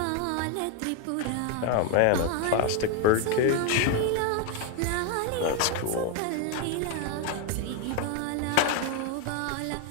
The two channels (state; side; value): different; both; correlation 0.01